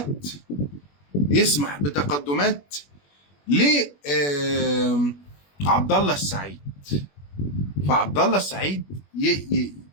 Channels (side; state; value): right; late; 21 ms